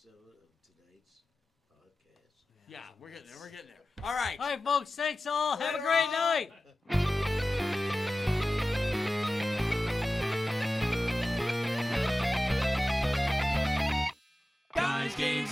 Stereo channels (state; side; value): normal; both; correlation 0.95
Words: of tonight's podcast. Yeah, we're getting there. We're getting there. All right. All right, folks. Thanks all. Have a great night. Guys, games,